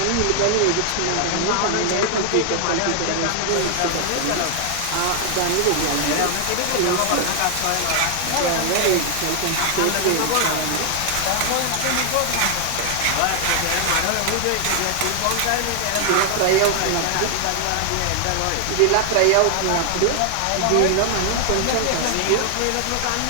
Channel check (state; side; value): different; both; correlation 0.00